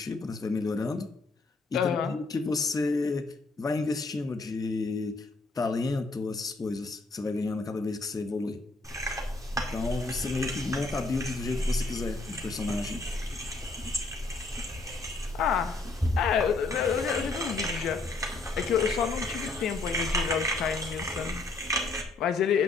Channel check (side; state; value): right; quieter; 3.5 dB